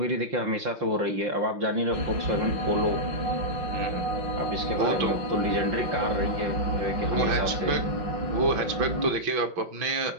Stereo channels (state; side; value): late; left; 5.8 ms